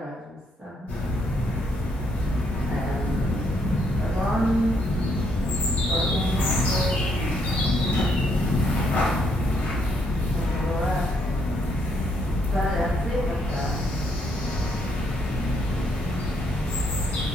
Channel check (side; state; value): both; normal; correlation 0.73